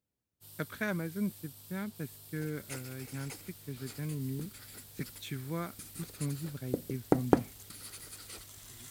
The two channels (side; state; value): both; identical; correlation 1.00